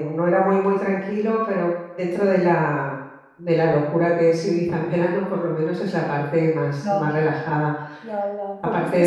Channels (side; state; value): both; identical; correlation 1.00